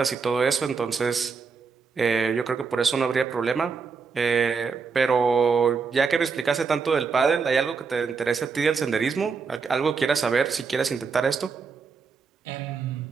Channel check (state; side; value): quieter; left; 5.2 dB